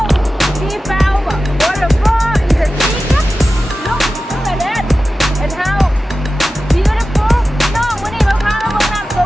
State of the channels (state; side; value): normal; both; correlation 0.94